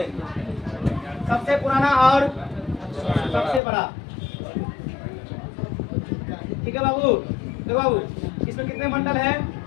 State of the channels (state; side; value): drops out; right; at 3.6 s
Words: सबसे पुराना और सबसे बड़ा, ठीक है बाबू? देखो बाबू इसमें कितने मंडल है?